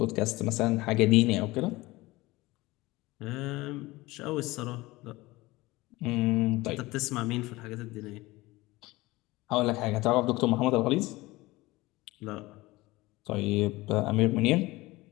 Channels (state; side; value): quieter; right; 20.3 dB